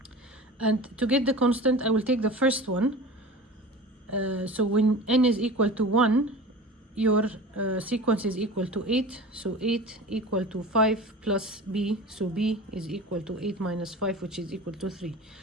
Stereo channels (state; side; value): normal; both; correlation 0.35